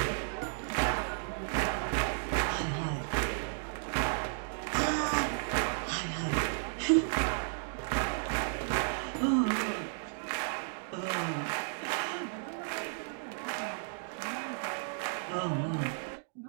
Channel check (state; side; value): silent; left; digital silence